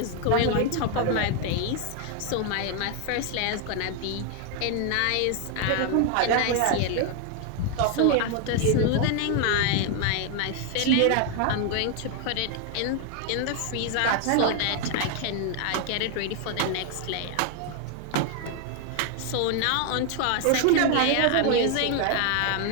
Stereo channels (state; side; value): different; both; correlation 0.00